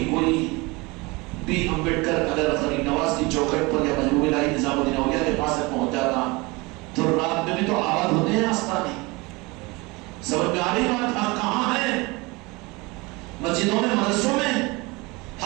کوئی بی امبیڈکر اگر غریب نواز کی چوکھٹ پر یا محبوب الہی نظام الدین اولیاء کے پاس پہنچ جاتا تو رات میں بھی تو آباد ہوتے ہیں آستانے۔ سمجھ میں آ رہی بات؟ حق کہاں ہے؟ مسجدوں میں، مدرسوں میں،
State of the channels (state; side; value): quieter; left; 24.9 dB